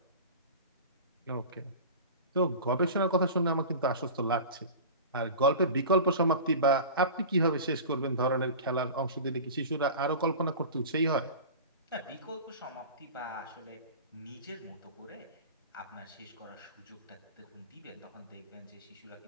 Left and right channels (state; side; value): inverted; both; correlation -0.35